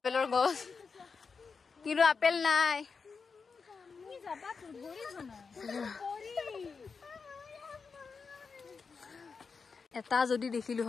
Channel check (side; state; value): right; quieter; 5.1 dB